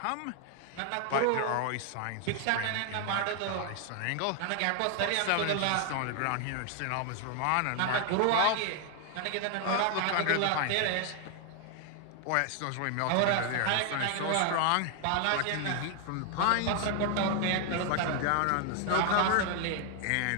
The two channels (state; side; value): different; both; correlation 0.00